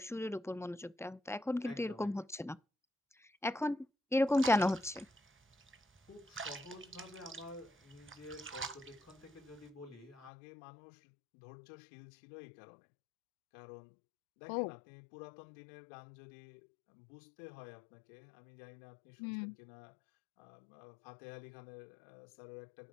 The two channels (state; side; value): drops out; right; at 10.3 s